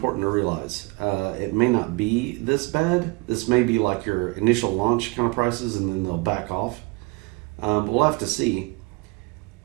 to realize. It may not be this bad. This may be like your initial launch kind of prices, and then they'll back off. But we'll have to see.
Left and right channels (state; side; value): quieter; left; 26.3 dB